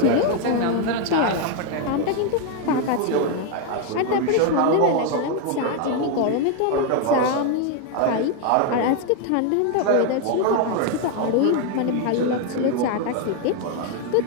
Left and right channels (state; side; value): different; both; correlation 0.01